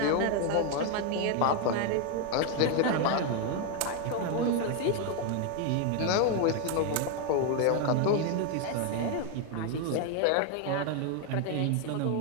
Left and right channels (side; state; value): both; different; correlation 0.01